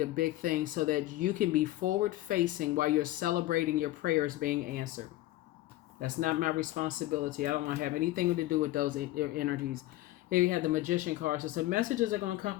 big thing so that you can be forward facing while you're celebrating your prayers being answered. That's not my responsibility. I don't want to have anything to do with those energies. Here you have the Magician card. So some messages are going to come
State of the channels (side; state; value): right; quieter; 16.3 dB